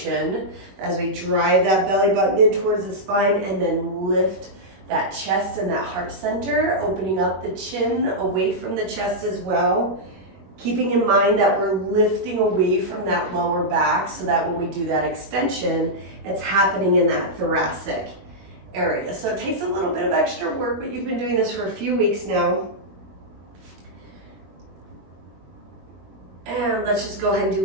as we drive that belly button in towards the spine and then lift that chest and that heart center, opening up the chin away from the chest as well. Keeping in mind that we're lifting away from that lower back so that when we do that extension, it's happening in that thoracic area. So it takes a little bit of extra work, but you've been doing this for a few weeks now. And let's just go ahead and do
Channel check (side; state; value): left; late; 21 ms